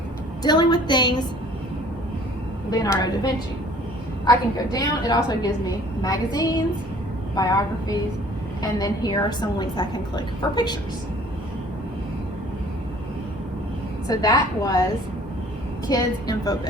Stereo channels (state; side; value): normal; both; correlation 0.53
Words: dealing with things Leonardo da Vinci. I can go down. It also gives me magazines, biographies, and then here are some links I can click for pictures. So that was Kids Info